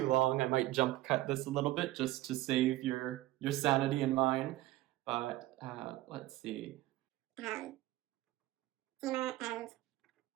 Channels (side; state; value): left; quieter; 16.6 dB